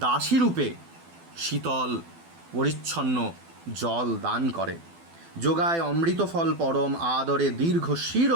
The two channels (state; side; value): late; left; 12 ms